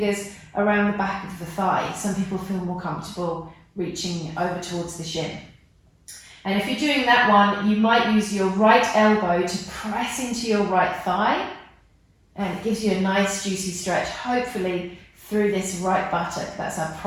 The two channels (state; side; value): identical; both; correlation 1.00